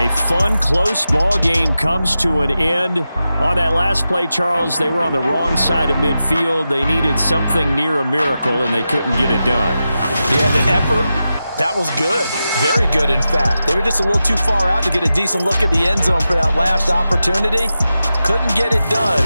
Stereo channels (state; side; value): inverted; both; correlation -0.91